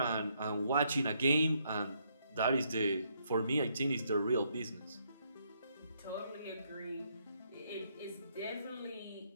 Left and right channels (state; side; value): inverted; both; correlation -0.73